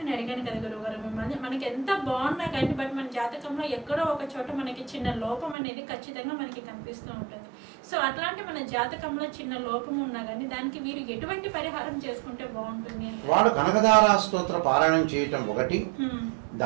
నేను అడిగాను కదా గురువు గారు, మిమ్మల్ని మనకి ఎంత బాగున్నా కానీ బట్ మన జాతకంలో ఎక్కడో ఒక చోట మనకి చిన్న లోపం అనేది ఖచ్చితంగా మనకి కనిపిస్తూ ఉంటుంది. సో అట్లాంటి మన జాతకంలో చిన్న లోపం ఉన్నా కానీ దానికి వీరు ఎటువంటి పరిహారం చేసుకుంటే బాగుంటుంది? వాడు కనకదారా స్తోత్ర పారాయణం చేయటం ఒకటి,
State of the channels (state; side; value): drops out; left; at 5.6 s